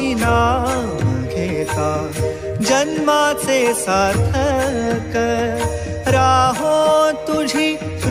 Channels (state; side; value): noise; right; hum, 25 dB below the sound